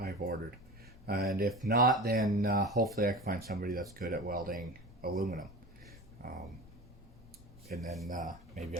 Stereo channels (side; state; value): left; noise; rumble, 22 dB below the sound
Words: I've ordered. And if not, then hopefully I can find somebody that's good at welding aluminum. And then maybe